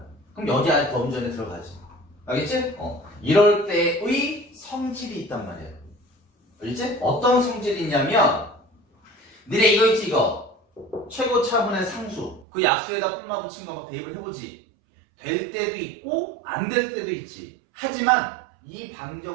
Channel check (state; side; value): drops out; left; at 12.5 s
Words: 그럼 여기 안에 범주 안에 들어가지. 알겠지? 이럴 때의 성질이 있단 말이야. 알겠지? 어떤 성질이 있냐면 니네 이거 있지 이거 최고차분의 상수 그 약수에다 뿔마 붙인 거 막 대입을 해보지. 될 때도 있고 안 될 때도 있지. 하지만 이